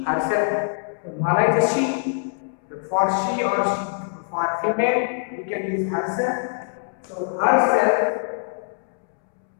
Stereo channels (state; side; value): silent; right; 63 dB below the other